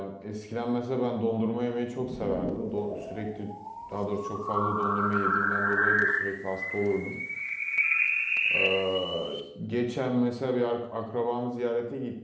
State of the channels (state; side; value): identical; both; correlation 1.00